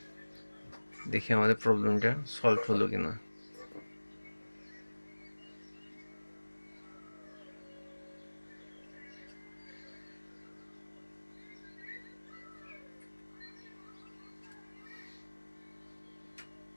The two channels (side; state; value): both; inverted; correlation -1.00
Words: দেখি আমাদের প্রবলেমটা সলভ হলো কিনা।